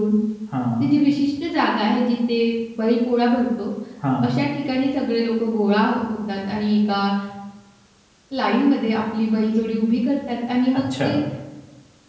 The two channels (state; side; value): identical; both; correlation 1.00